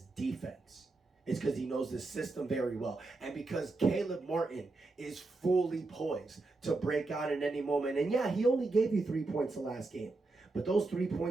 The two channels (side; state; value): left; quieter; 3.3 dB